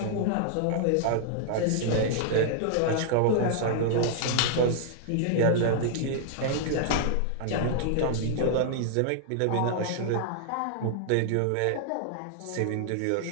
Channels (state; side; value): different; both; correlation -0.01